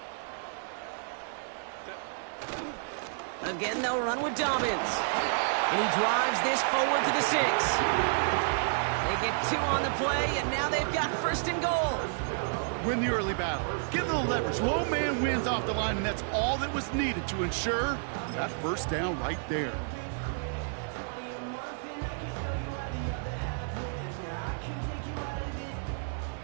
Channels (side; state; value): left; silent; digital silence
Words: Again, they'll run with Dobbins. And he drives this forward to the 6. They get 2 on the play, and now they've got first and goal. Win the early battle. Get a little leverage. Low man wins off the line, and that's all that was needed to ensure that first down right there.